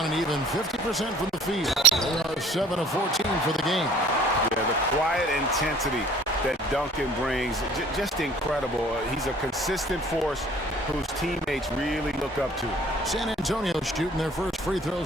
an even 50% from the field. They are 7 of 14 for the game. Yeah, the quiet intensity that Duncan brings, just incredible. He's a consistent force whose teammates really look up to. San Antonio shooting their first free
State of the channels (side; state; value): both; normal; correlation 0.53